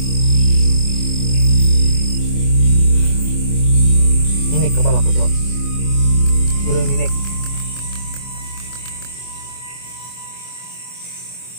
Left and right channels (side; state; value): right; late; 24 ms